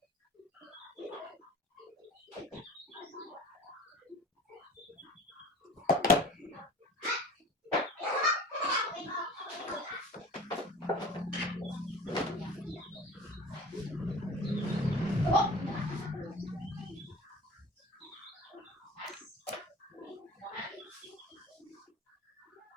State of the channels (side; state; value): both; normal; correlation 0.40